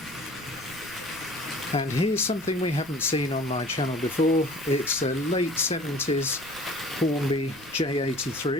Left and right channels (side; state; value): right; noise; rumble, 21 dB below the sound